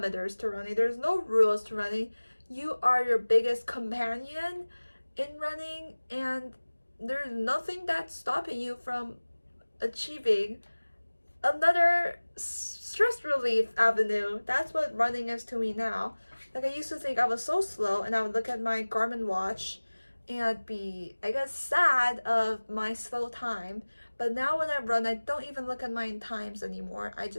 to running. There's no rules to running. You are your biggest companion in running, and there's nothing that's stopping you from achieving another stress relief avenue. That's what running is to me now. Like, I used to think I was so slow, and I would look at my Garmin watch and I'd be, I guess, sad of my slow time. But now when I run, I don't even look at my times anymore. I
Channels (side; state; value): both; inverted; correlation -1.00